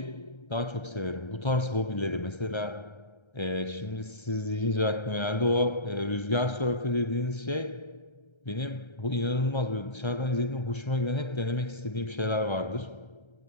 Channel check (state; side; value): late; right; 1.3 ms